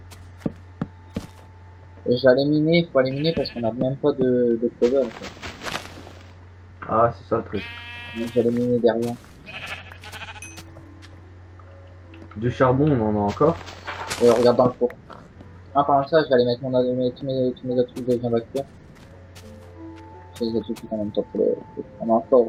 Et je vais aller miner, il faut aller miner parce qu'on n'a même pas de cover, en fait. Ah, c'est ça le truc. Donc j'allais miner derrière. Du charbon, on en a encore. Et regarde dans le four. Ah, par ça, je vais aller mettre tous mes autres trucs que je viens d'acquérir. Je les ai tout en même temps pour le... On a encore,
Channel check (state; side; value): identical; both; correlation 1.00